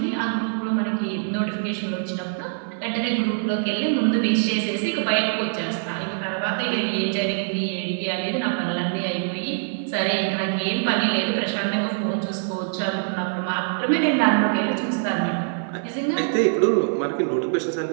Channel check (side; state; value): left; silent; 56 dB below the other